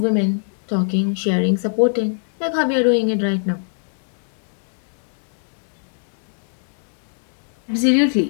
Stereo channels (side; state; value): right; silent; digital silence